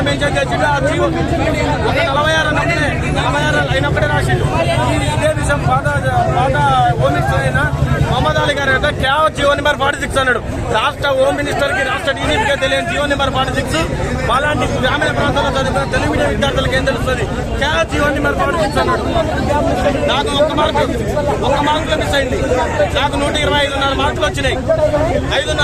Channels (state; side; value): identical; both; correlation 1.00